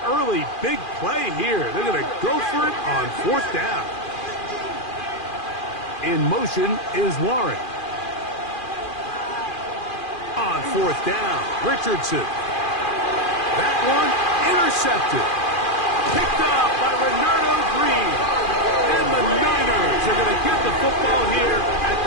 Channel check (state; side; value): late; right; 2.4 ms